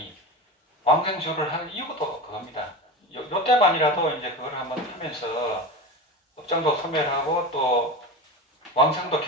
왕생주를 하는 이유도 그겁니다. 요 때만이라도 이제 그걸 한번 하면서 업장도 소멸하고 또 왕생도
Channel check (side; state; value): both; normal; correlation 0.26